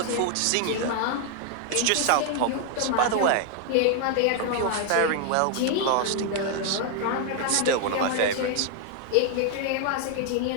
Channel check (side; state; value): both; different; correlation 0.00